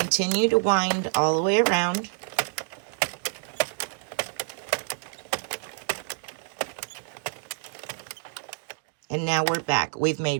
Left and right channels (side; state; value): left; silent; digital silence